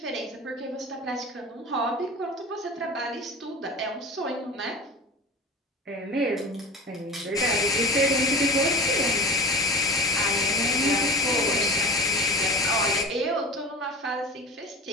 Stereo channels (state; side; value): normal; both; correlation 0.32